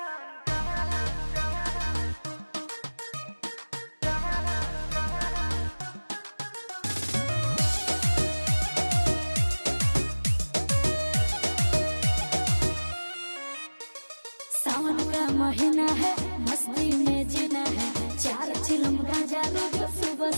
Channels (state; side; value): inverted; both; correlation -1.00